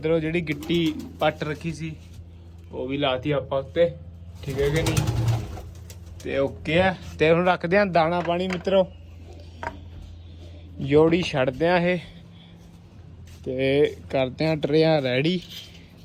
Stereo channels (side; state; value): both; identical; correlation 1.00